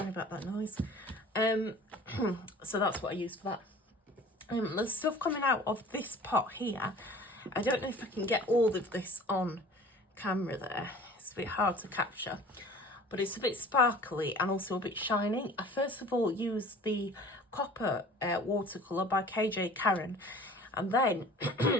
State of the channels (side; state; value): both; normal; correlation 0.45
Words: about that noise. So that's what I used for that. The stuff coming out of this pot here, I don't know if I can get all of this on camera there. It's a bit hard to capture, but it's a bit sparkly and also a bit shiny. I first of all used the Copper watercolour by KJ Karen, and then